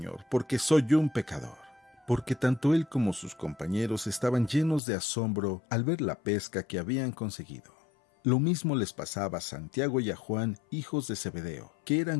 porque soy un pecador». Porque tanto él como sus compañeros estaban llenos de asombro al ver la pesca que habían conseguido. Lo mismo les pasaba a Santiago y a Juan, hijos de Zebedeo, que eran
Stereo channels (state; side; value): drops out; right; at 4.8 s